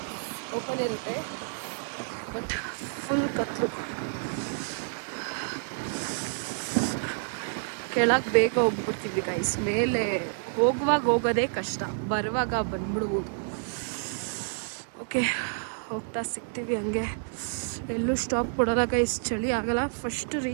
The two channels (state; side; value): silent; left; 59 dB below the other